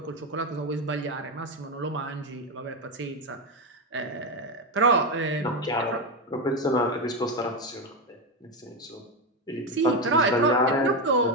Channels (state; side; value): normal; both; correlation 0.12